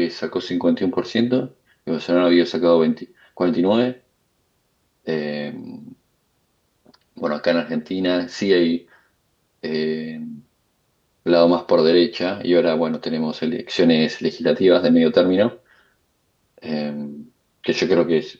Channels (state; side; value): identical; both; correlation 1.00